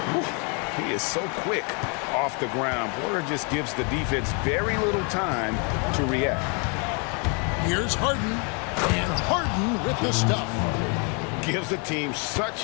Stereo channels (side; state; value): right; quieter; 35.9 dB